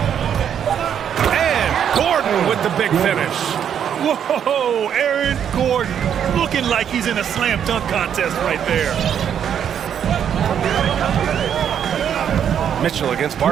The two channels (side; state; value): left; quieter; 8.8 dB